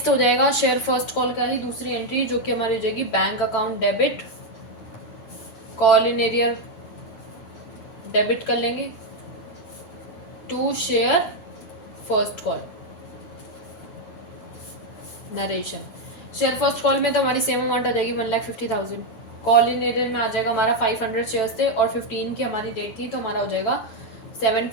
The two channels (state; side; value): late; right; 9.0 ms